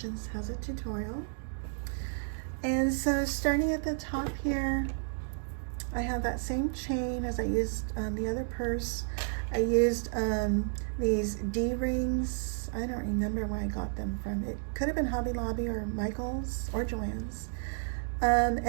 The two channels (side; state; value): left; silent; digital silence